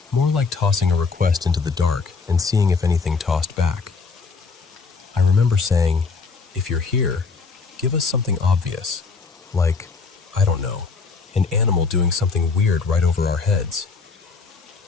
More like tossing a request into the dark and seeing if anything tossed back. I remember saying, if you're here, give us something obvious. Like, I don't know, an animal doing something weird right over our heads.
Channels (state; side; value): quieter; right; 4.6 dB